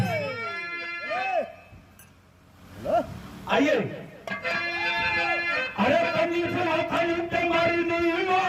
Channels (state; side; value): identical; both; correlation 1.00